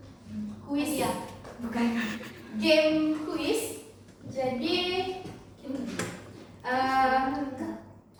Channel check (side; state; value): both; identical; correlation 1.00